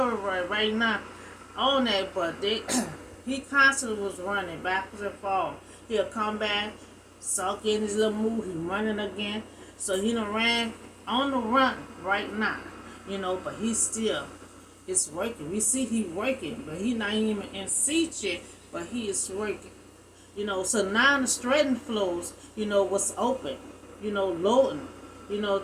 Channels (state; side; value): identical; both; correlation 1.00